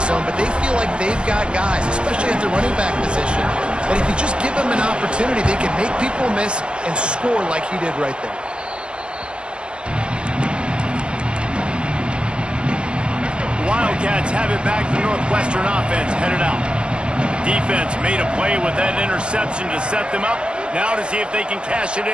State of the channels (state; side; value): late; left; 0.054 ms